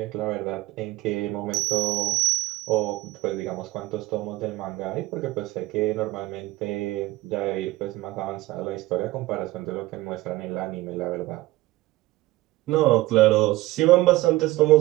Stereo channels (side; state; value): left; quieter; 18.5 dB